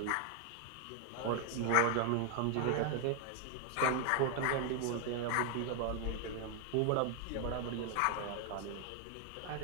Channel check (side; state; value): both; different; correlation 0.00